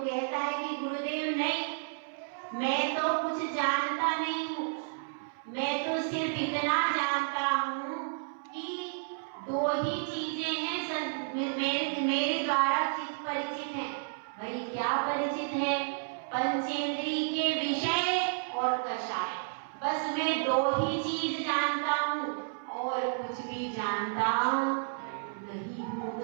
है कि गुरुदेव नहीं, मैं तो कुछ जानता नहीं हूँ, मैं तो सिर्फ इतना जानता हूँ कि दो ही चीजें हैं मेरे द्वारा चित्त परिचित है। भाई क्या परिचित है? पंचेंद्रिय के विषय और कषाय। बस मैं दो ही चीज जानता हूँ और कुछ भी जानता नहीं हूँ। तो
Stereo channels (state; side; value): silent; left; 57 dB below the other